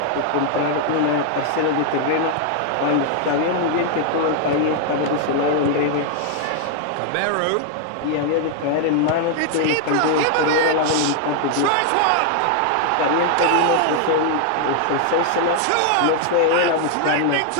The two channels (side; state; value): both; different; correlation 0.00